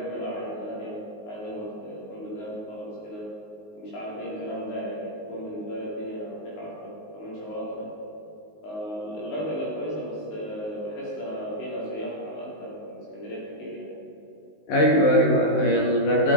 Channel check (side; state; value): right; late; 19 ms